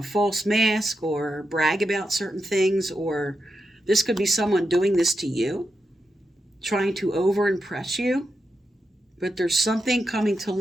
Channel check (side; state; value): both; normal; correlation 0.86